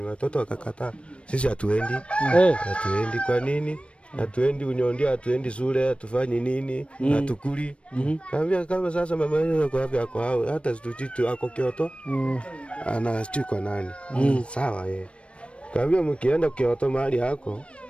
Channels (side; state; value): right; late; 0.060 ms